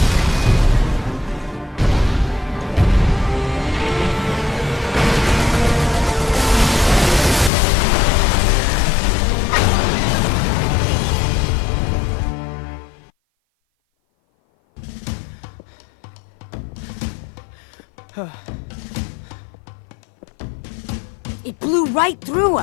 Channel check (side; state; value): right; drops out; at 7.5 s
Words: It blew right through